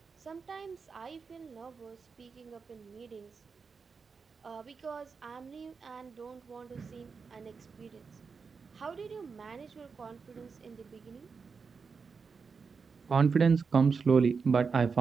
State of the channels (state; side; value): quieter; left; 5.2 dB